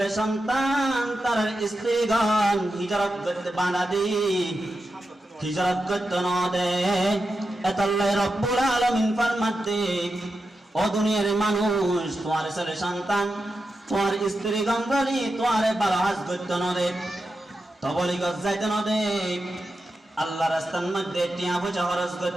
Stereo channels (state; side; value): normal; both; correlation 0.89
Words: সন্তান তার স্ত্রীগণ হিজরত করতে বাধা দি, হিজরত করতে না দে। এতাল্লাহ রব্বুল আলামিন ফরমাতে ও দুনিয়ার মানুষ তোমার ছেলে সন্তান তোমার স্ত্রী গন্ধরি তোমার ভালো হাজ করতে নদে তবলি গজ যাইতে নদে আল্লাহ রাস্তার মধ্যে টিয়া পয়সা খরচ